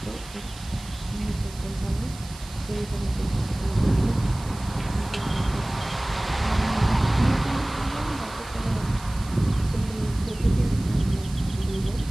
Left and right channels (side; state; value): right; noise; hiss, 17 dB below the sound